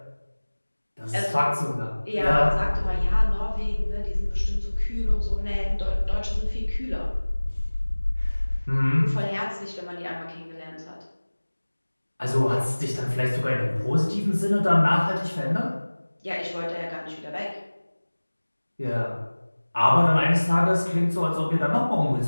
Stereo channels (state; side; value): inverted; both; correlation -1.00